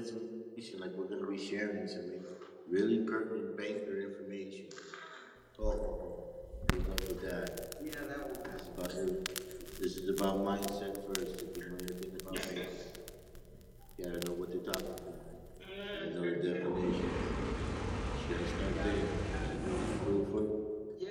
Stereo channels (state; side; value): identical; both; correlation 1.00